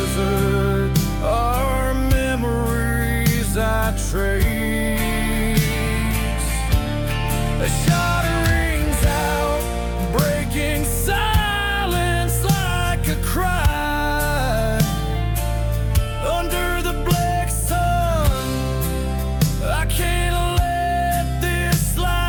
our memories I trace. A shot rings out, breaking silence like a cry. Under the black sun, I can't let this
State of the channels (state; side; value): identical; both; correlation 1.00